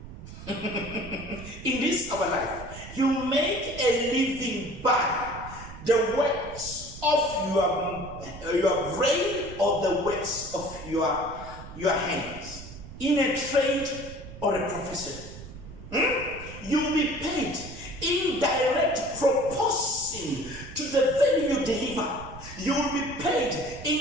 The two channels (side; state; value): right; noise; rumble, 14 dB below the sound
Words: In this our life, you make a living by the works of your brain or the works of your hands, in a trade or a profession. You will be paid in direct proportion to the value you deliver. You will be paid